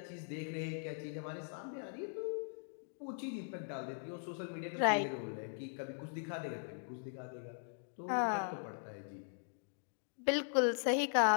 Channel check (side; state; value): right; silent; digital silence